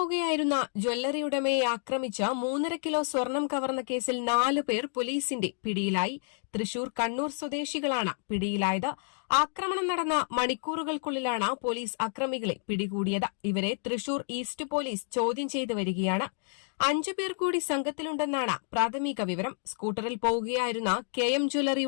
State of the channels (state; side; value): silent; right; digital silence